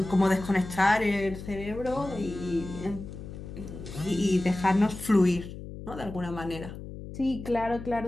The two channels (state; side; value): noise; left; hum, 11 dB below the sound